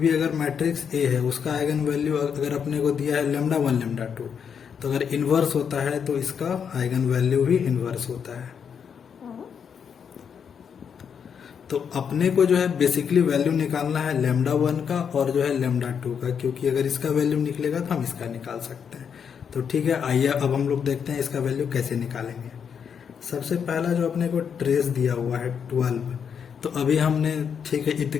अगर मैट्रिक्स ए है, उसका आइगन वैल्यू अगर अपने को दिया है λ1 λ2, तो अगर इनवर्स होता है तो इसका आइगन वैल्यू भी इनवर्स होता है। तो अपने को जो है बेसिकली वैल्यू निकालना है λ1 का और जो है λ2 का, क्योंकि अगर इसका वैल्यू निकलेगा तो हम इसका निकाल सकते हैं। तो ठीक है, आइए अब हम लोग देखते हैं इसका वैल्यू कैसे निकालेंगे। सबसे पहला जो अपने को ट्रेस दिया हुआ है 12, तो अभी हमने ठीक है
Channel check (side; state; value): right; quieter; 7.2 dB